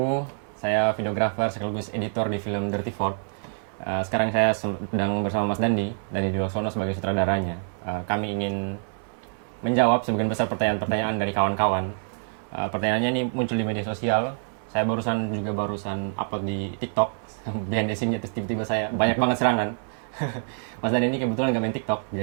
Saya videografer sekaligus editor di film Dirty Fort. Sekarang saya sedang bersama Mas Dandi Diwaksono sebagai sutradaranya. Kami ingin menjawab sebagian besar pertanyaan-pertanyaan dari kawan-kawan. Pertanyaannya ini muncul di media sosial. Saya barusan upload di TikTok. Behind the scene-nya terus tiba-tiba saya banyak banget serangan. Mas Dandi ini kebetulan nggak main TikTok.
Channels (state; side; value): silent; left; 61 dB below the other